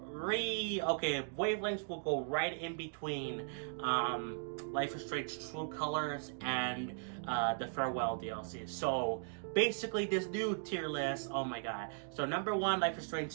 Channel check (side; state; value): left; silent; digital silence